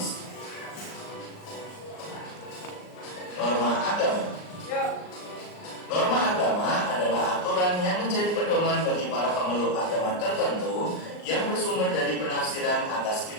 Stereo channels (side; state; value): right; late; 38 ms